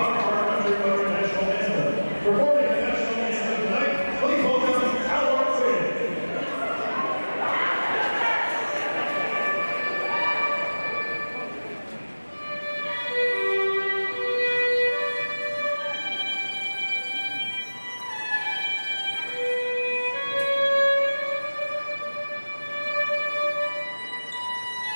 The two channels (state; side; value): inverted; both; correlation -1.00